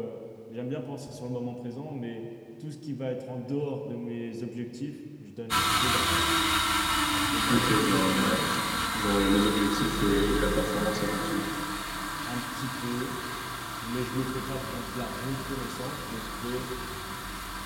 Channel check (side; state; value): both; identical; correlation 1.00